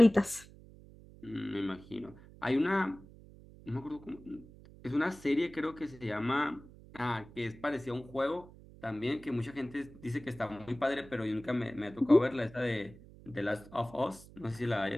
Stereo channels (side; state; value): right; noise; hum, 20 dB below the sound